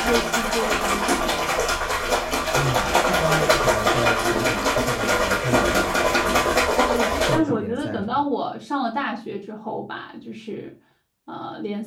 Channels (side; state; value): both; identical; correlation 1.00